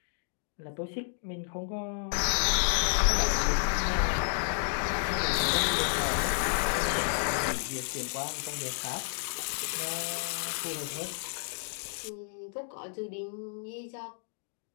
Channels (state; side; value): silent; right; digital silence